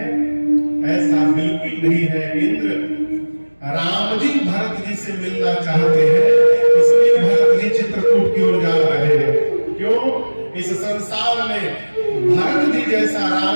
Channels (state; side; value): inverted; both; correlation -1.00